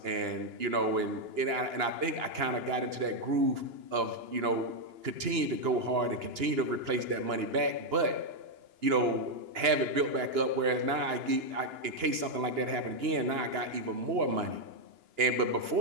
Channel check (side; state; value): left; late; 2.9 ms